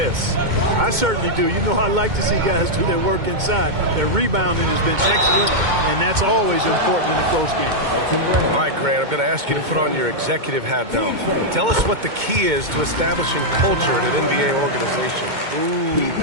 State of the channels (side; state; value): left; late; 2.2 ms